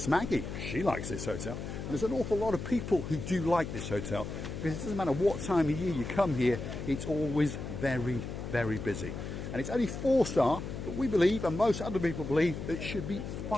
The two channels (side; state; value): left; noise; hum, 7 dB below the sound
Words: Maggie, she likes this hotel. And there's an awful lot of people who do like this hotel, because it doesn't matter what time of year you come here, it's always very, very busy. And it's only 4-star, but we believe, and most other people believe, that it should be